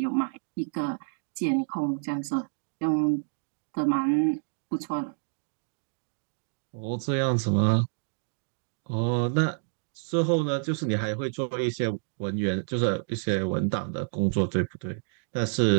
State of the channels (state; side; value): silent; left; digital silence